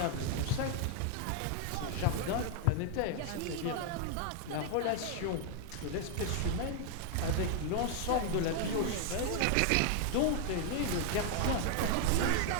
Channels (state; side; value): different; both; correlation 0.00